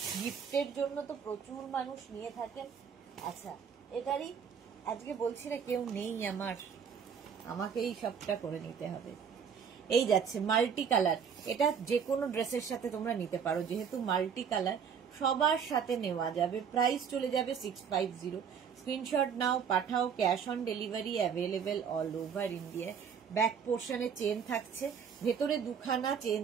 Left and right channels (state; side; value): quieter; left; 7.1 dB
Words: গিফটের জন্য তো প্রচুর মানুষ নিয়ে থাকেন। আচ্ছা এটারই আজকে বলছি না, কেউ নেই আমাকেই সবটা করে নিতে হবে। এই যাচ্ছে মাল্টি কালার, এটা যে কোনো ড্রেসের সাথে তোমরা নিতে পারো, যেহেতু মাল্টি কালার সবার সাথে নেওয়া যাবে। প্রাইস চলে যাবে 650। স্ক্রিনশট নাও, পাঠাও, cash on delivery available all over India. Back পোর্শনে চেন থাকছে, ভেতরে দুখানা চেন